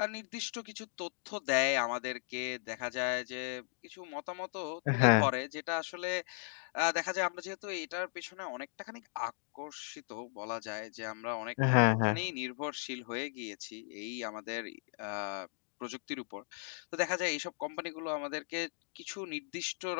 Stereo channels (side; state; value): right; silent; digital silence